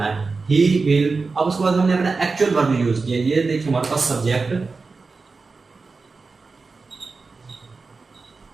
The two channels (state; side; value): quieter; left; 4.2 dB